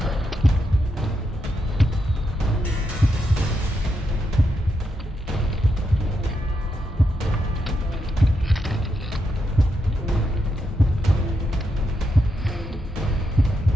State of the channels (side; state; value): both; normal; correlation 0.83